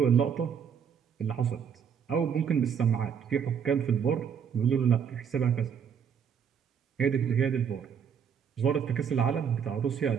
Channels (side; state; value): left; quieter; 7.5 dB